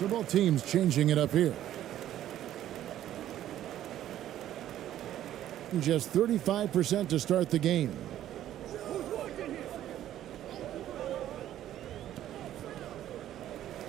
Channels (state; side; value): quieter; left; 12.2 dB